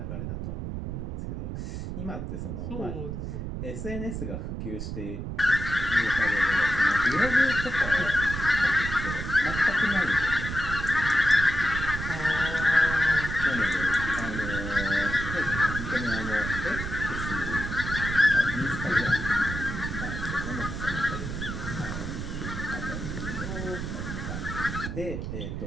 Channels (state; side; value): noise; right; rumble, 5 dB below the sound